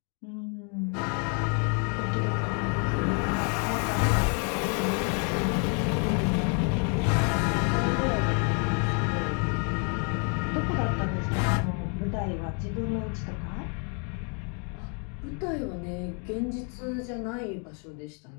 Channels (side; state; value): right; quieter; 39.3 dB